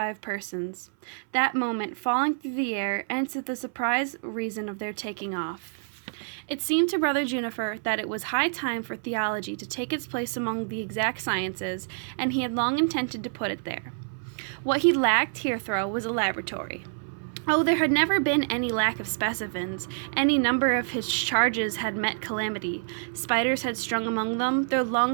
persons. That moment, falling through the air, answered the surprised reason of their taking off. It seemed to Brother Juniper that it was high time for theology to take its place among the exact sciences, and he had long intended to put it there. What he lacked, Heathrow, was a laboratory. Oh, there had never been any lack of specimens. Any number of his charges had met calamity. Spiders had strung among them, their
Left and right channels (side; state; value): left; silent; 60 dB below the other